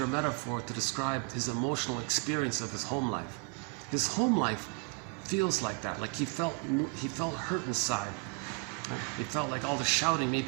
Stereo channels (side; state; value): left; quieter; 32.5 dB